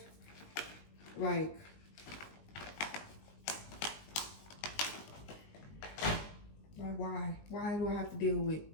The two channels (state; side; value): late; right; 19 ms